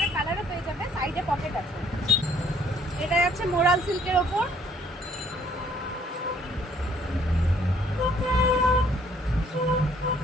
কালারও পেয়ে যাবে, সাইডে পকেট আছে। এটা যাচ্ছে মোরাল সিল্কের ওপর।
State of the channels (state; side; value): normal; both; correlation 0.62